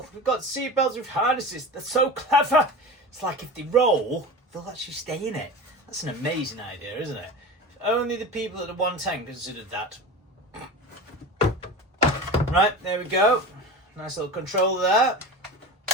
we've got seatbelts with harnesses. They're so clever. It's like if they roll, they'll actually stay in it. That's an amazing idea, isn't it? If only the people at the 110 considered that. Right, there we go. Nice little controller there.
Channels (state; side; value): normal; both; correlation 0.30